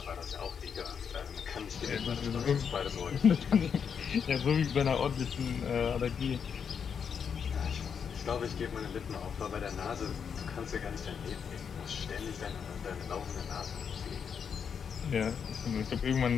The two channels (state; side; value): quieter; right; 6.9 dB